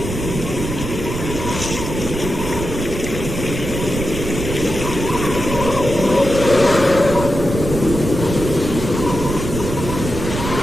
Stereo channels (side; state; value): right; noise; rumble, 5 dB below the sound